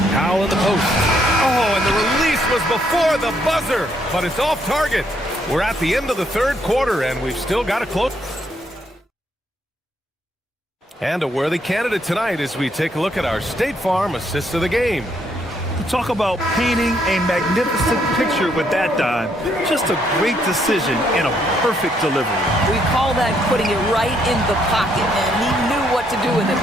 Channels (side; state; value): both; normal; correlation 0.72